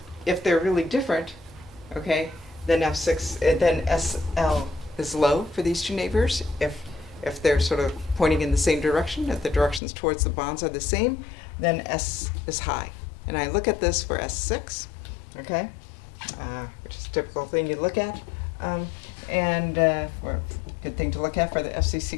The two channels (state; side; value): drops out; right; at 9.8 s